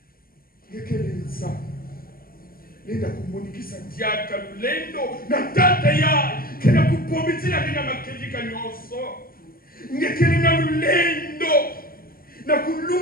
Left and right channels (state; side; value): late; right; 0.42 ms